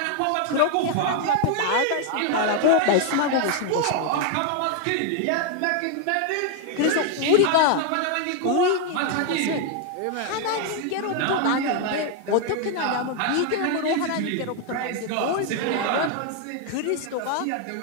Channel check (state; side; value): different; both; correlation 0.01